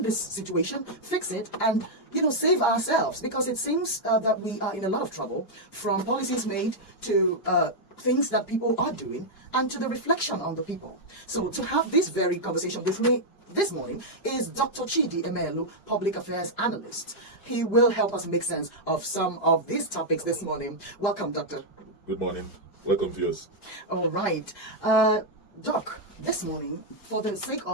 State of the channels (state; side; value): late; right; 4.9 ms